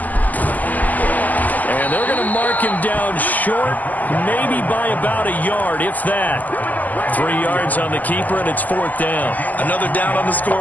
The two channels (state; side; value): late; right; 0.081 ms